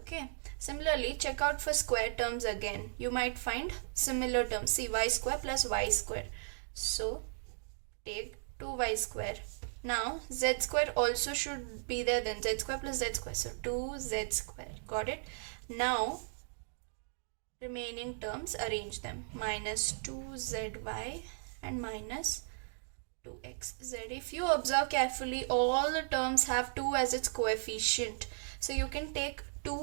Similarly, check out for square terms again. You might find similar terms. See, y square plus y square. So take 2y square. Now z square also should be there, then z square plus z square. So 2z square. Got it? Now remaining terms, arrange them. Minus 2zy and minus 2xz. If you observe carefully, all the terms have 2 as its coefficient. So you can take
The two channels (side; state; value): left; silent; digital silence